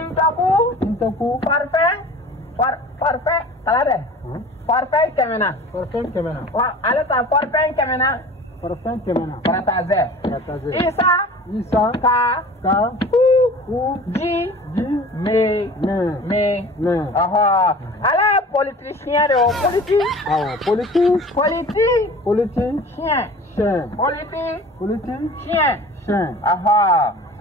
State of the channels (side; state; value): both; normal; correlation 0.42